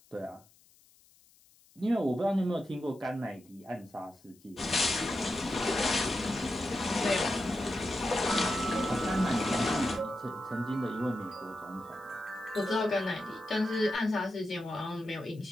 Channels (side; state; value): left; noise; hiss, 29 dB below the sound